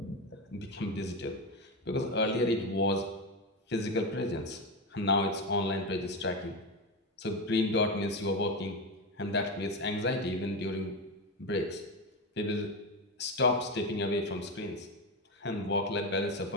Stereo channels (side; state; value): both; normal; correlation 0.15